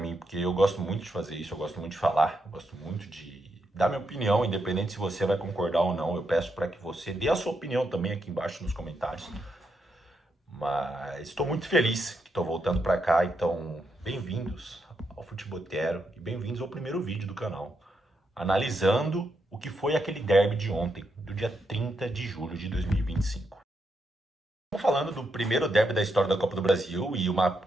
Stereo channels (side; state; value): both; normal; correlation 0.81